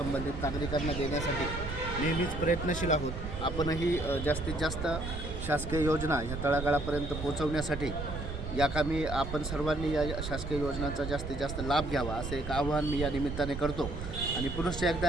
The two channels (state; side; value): noise; right; rumble, 6 dB below the sound